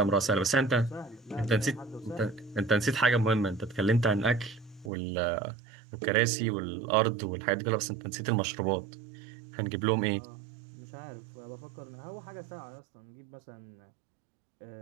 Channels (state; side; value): drops out; left; at 4.9 s